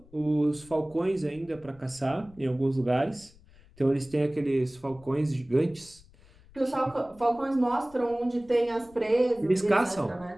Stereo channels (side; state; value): left; noise; rumble, 25 dB below the sound